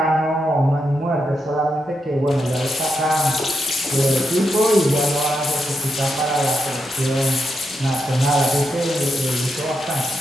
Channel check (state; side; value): normal; both; correlation 0.84